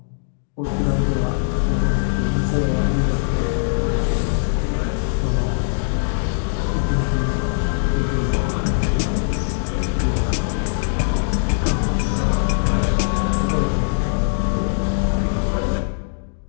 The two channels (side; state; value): right; silent; digital silence